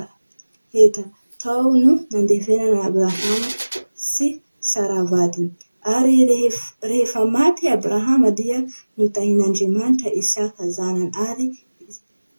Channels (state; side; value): inverted; both; correlation -1.00